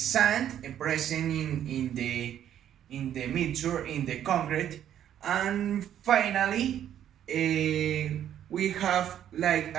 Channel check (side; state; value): left; quieter; 10.5 dB